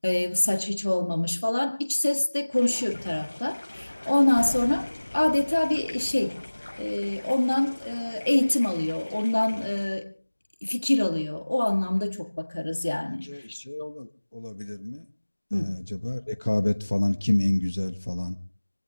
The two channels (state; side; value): inverted; both; correlation -1.00